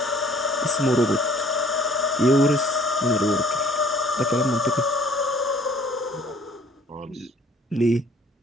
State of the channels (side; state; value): both; normal; correlation 0.57